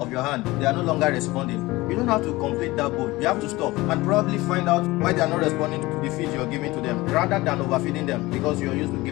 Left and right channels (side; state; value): right; quieter; 20.2 dB